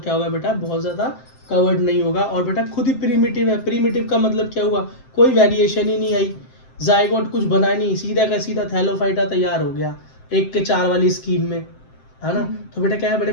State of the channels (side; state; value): right; late; 7.7 ms